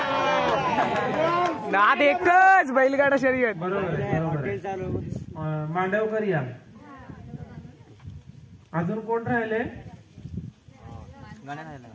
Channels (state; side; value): identical; both; correlation 1.00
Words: नाद एकच बैलगाडा शर्यत. बरोबर. मांडवकर या. अजून कोण राहिले?